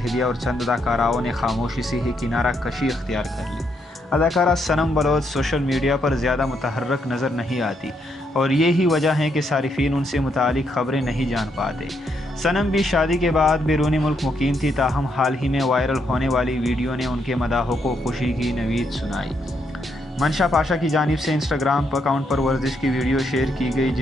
दिया और चंद अदाकाराओं ने खामोशी से ही किनारा कशी इख्तियार कर ली। अदाकारा सनम बलोच सोशल मीडिया पर ज़्यादा मुतहर्रक नज़र नहीं आती और यही वजह है कि सारिफीन उनसे मुतालिक ख़बरें नहीं जान पाते। सनम भी शादी के बाद बैरूनी मुल्क मुकीम थी, ताहम हाल ही में वायरल होने वाली वीडियो ने उनके मदाहों को खुशी की नवीद सुनाई। मंशा पाशा की जानिब से इंस्टाग्राम अकाउंट पर वर्जिश की वीडियो शेयर की गई,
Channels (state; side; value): normal; both; correlation 0.77